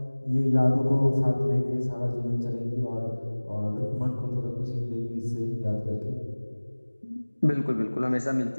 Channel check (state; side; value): inverted; both; correlation -1.00